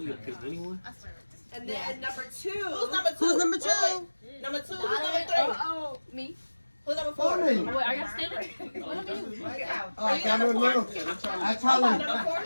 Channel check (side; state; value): both; inverted; correlation -1.00